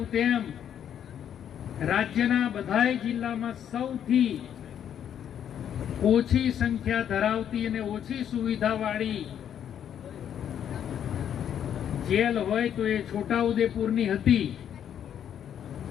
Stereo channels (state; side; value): quieter; right; 9.4 dB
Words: તેમ રાજ્યના બધાય જિલ્લામાં સૌથી ઓછી સંખ્યા ધરાવતી અને ઓછી સુવિધાવાળી જેલ હોય તો એ છોટાઉદેપુરની હતી